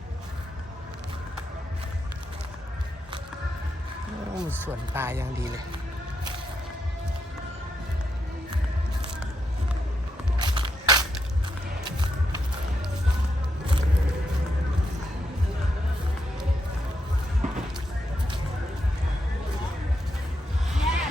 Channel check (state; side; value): normal; both; correlation 0.82